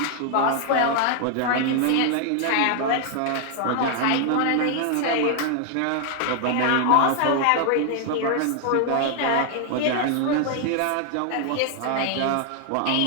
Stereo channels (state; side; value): different; both; correlation 0.00